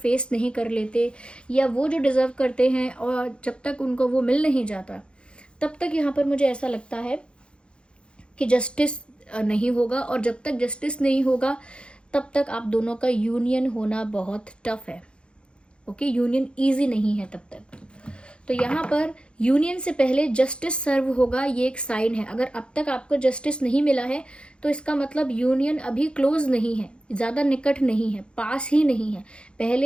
नहीं कर लेते या वो जो डिज़र्व करते हैं और जब तक उनको वो मिल नहीं जाता, तब तक यहाँ पर मुझे ऐसा लगता है कि जस्टिस नहीं होगा। और जब तक जस्टिस नहीं होगा तब तक आप दोनों का यूनियन होना बहुत टफ है। ओके, यूनियन ईजी नहीं है तब तक। तो यहाँ पर यूनियन से पहले जस्टिस सर्व होगा, ये एक साइन है। अगर अब तक आपको जस्टिस नहीं मिला है तो इसका मतलब यूनियन अभी क्लोज नहीं है, ज़्यादा निकट नहीं है, पास ही नहीं है।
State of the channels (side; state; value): right; late; 0.056 ms